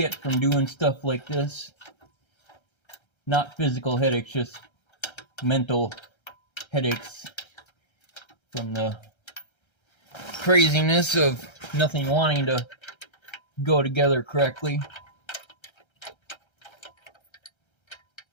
from doing stuff like this, not physical headaches, just mental headaches from the craziness of nothing wanting to go together correctly.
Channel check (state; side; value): late; right; 1.3 ms